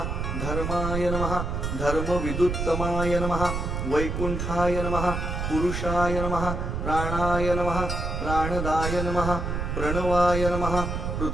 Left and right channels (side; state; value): right; noise; rumble, 2 dB below the sound